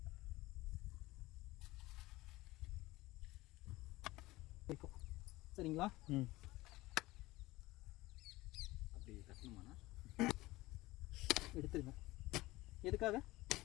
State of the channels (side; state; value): right; quieter; 19.2 dB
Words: சரிங்களா? அப்படி கட்டணுமாண்ணா? எடுத்துருங்க. எதுக்காக?